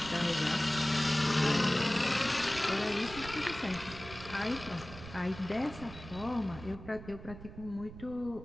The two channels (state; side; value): noise; right; rumble, 14 dB below the sound